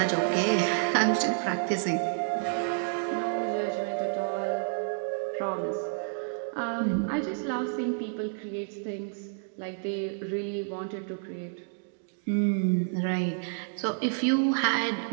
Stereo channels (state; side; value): silent; left; digital silence